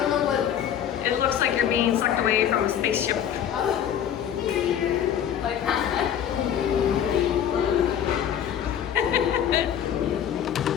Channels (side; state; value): right; quieter; 9.5 dB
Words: know what. It looks like you're being sucked away from a spaceship. Like that.